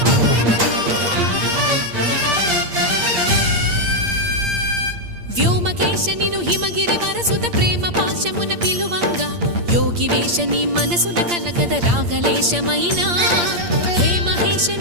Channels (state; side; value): late; left; 8.6 ms